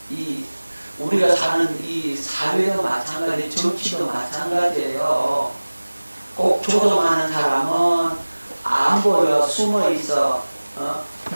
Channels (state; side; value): inverted; both; correlation -1.00